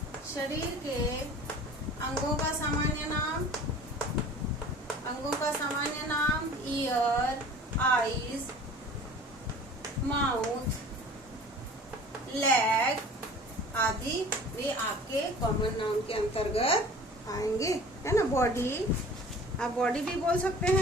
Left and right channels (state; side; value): normal; both; correlation 0.44